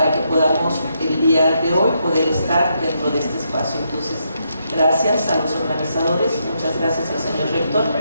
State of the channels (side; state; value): both; inverted; correlation -0.79